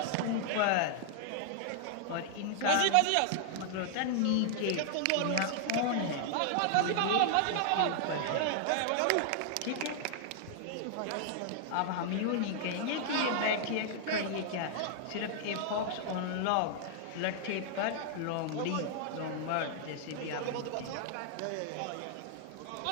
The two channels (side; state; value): both; different; correlation -0.01